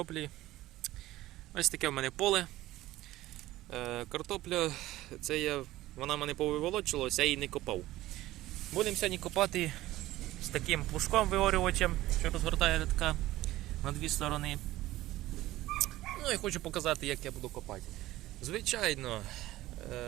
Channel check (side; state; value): left; quieter; 16.3 dB